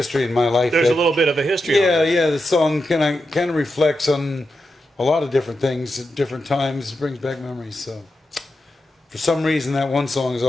in my life. There's that, a little bit of a history. Yeah, on it. yeah. The song kind of reflects on a lot of different things at different times. It brings back memories. So, for some reason, that one song has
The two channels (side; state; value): both; normal; correlation 0.88